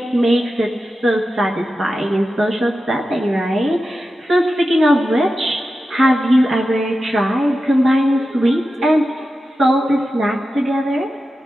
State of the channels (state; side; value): normal; both; correlation 0.92